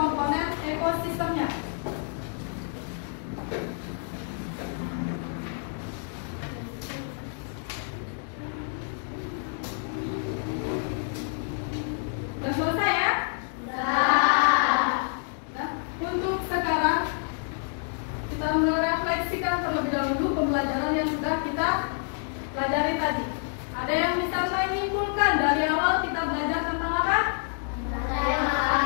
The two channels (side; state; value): right; silent; 56 dB below the other